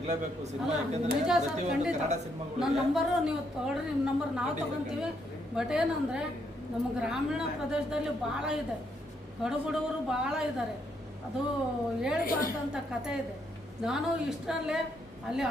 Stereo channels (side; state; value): both; normal; correlation 0.75